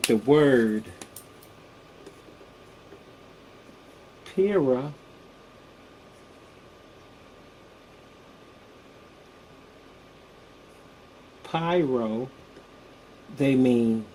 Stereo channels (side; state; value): both; identical; correlation 1.00